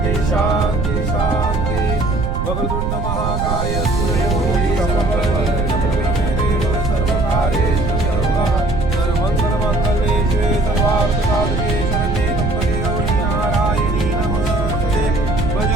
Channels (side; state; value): right; noise; rumble, 1 dB below the sound